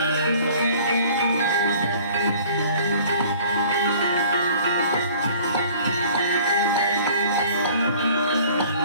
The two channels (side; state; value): both; inverted; correlation -0.51